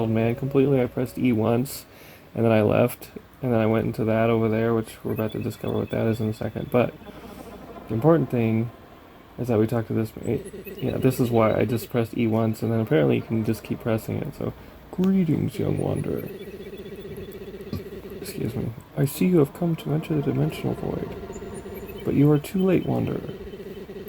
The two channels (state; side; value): identical; both; correlation 1.00